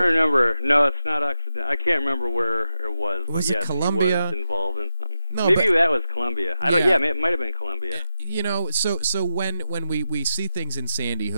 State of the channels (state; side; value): inverted; both; correlation -0.91